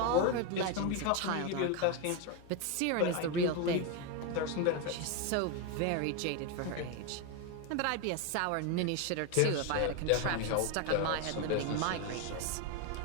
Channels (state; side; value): different; both; correlation 0.02